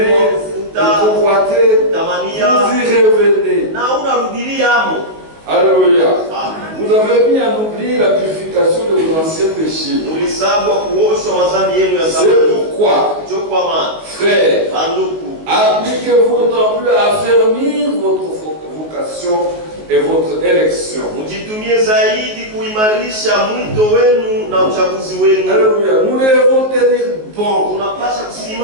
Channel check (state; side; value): late; left; 19 ms